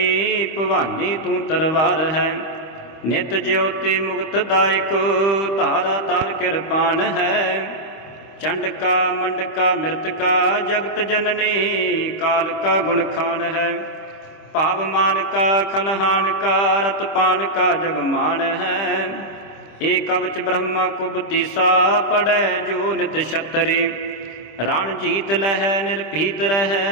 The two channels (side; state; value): right; late; 25 ms